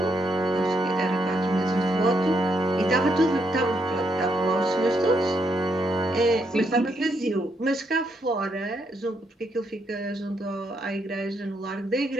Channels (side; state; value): both; normal; correlation 0.77